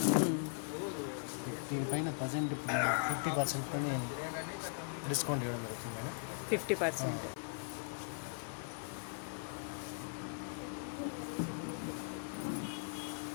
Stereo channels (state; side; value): silent; right; 52 dB below the other